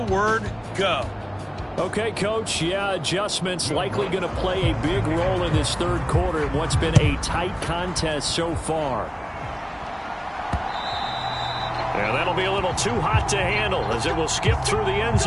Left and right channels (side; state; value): both; identical; correlation 1.00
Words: go. Okay, Coach, yeah, adjustments likely going to play a big role in this 3rd quarter in what's been a tight contest so far. And that'll be a little too hot to handle as it will skip through the end